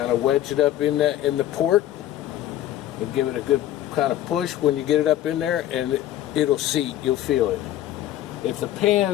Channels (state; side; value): quieter; right; 12.8 dB